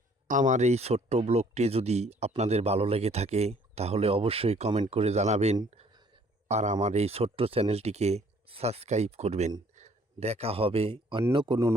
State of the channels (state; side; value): normal; both; correlation 0.60